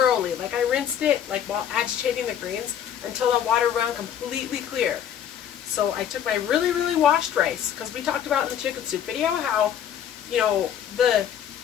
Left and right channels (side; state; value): right; quieter; 9.5 dB